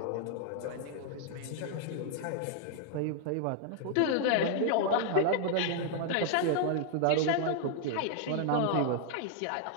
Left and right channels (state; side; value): different; both; correlation 0.00